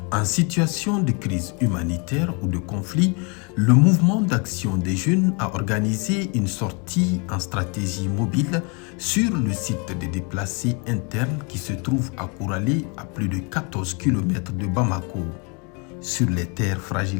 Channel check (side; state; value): right; quieter; 33.1 dB